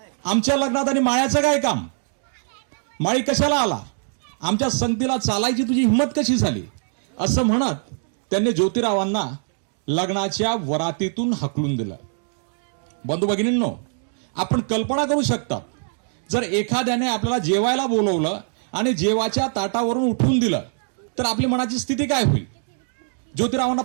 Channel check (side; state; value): left; silent; 61 dB below the other